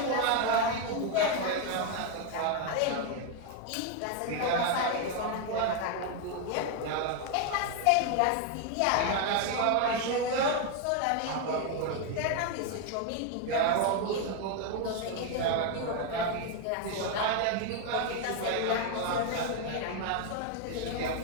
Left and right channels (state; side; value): different; both; correlation 0.01